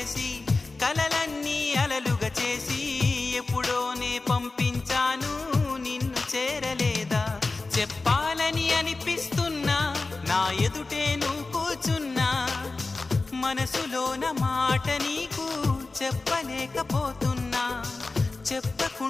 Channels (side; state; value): right; quieter; 3.6 dB